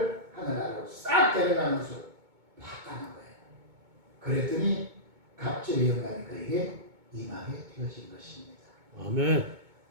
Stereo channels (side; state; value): left; late; 2.2 ms